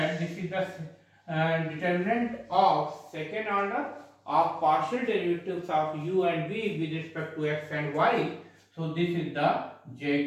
this is the determinant of second order of partial derivatives of u and v with respect to x and y. So this is the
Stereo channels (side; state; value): both; identical; correlation 1.00